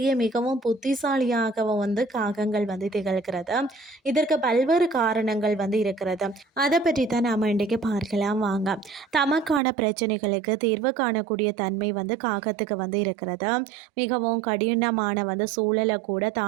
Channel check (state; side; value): drops out; left; at 9.6 s